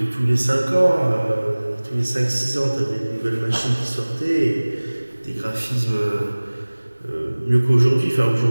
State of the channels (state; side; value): inverted; both; correlation -1.00